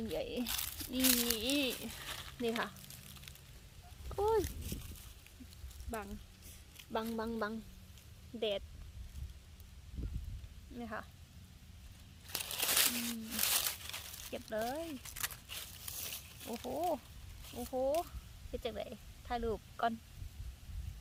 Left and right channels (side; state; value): both; identical; correlation 1.00